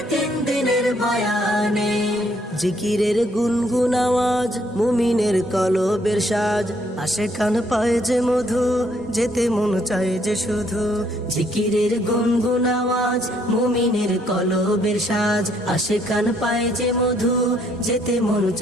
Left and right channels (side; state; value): both; normal; correlation 0.68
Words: 3 দিনের বয়ানে। জিকিরের গুনগুন আওয়াজ মুমিনের কলবের সাজ, আশেকান পায় যে মধু যেতে মন চায় যে শুধু। জিকিরের গুনগুন আওয়াজ মুমিনের কলবের সাজ, আশেকান পায় যে মধু যেতে মন